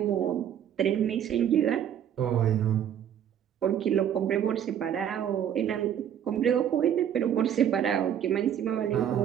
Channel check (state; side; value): quieter; left; 9.6 dB